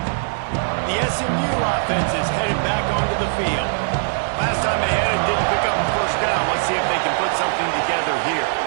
The SMU offense is headed back onto the field. Last time they had it, didn't pick up a first down. Let's see if they can put something together here.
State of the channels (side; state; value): left; silent; 65 dB below the other